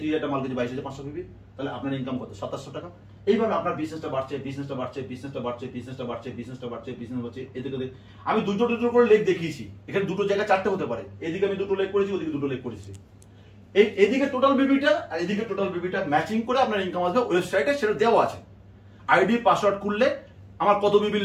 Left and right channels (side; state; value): both; identical; correlation 1.00